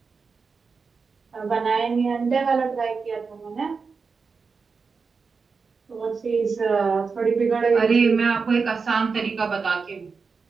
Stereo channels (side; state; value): left; quieter; 5.0 dB